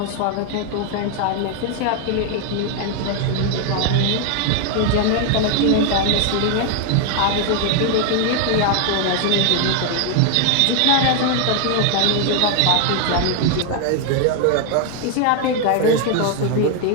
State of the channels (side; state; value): both; different; correlation 0.00